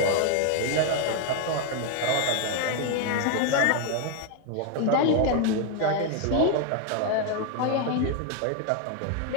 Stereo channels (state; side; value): different; both; correlation 0.01